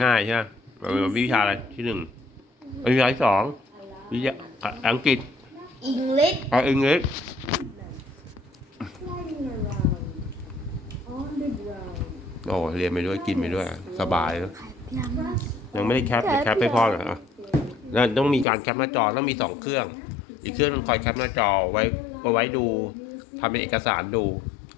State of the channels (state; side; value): drops out; right; at 18.4 s